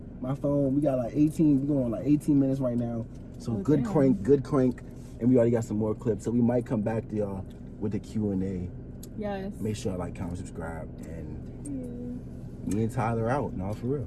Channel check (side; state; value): both; identical; correlation 1.00